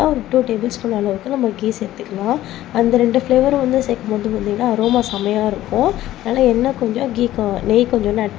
ஒரு 2 டேபிள் ஸ்பூன் அளவுக்கு நம்ம கீ சேர்த்துக்கலாம். அந்த 2 ஃப்ளேவரும் வந்து சேர்க்கும் போது பார்த்திங்கன்னா அரோமா செமையாக இருக்கும். அதனால் எண்ணெய் கொஞ்சம் நெய் கொஞ்சம் ஆட்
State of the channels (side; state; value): right; quieter; 14.3 dB